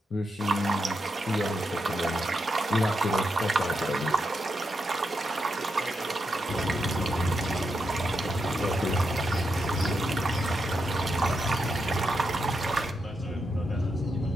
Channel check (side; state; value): both; normal; correlation 0.84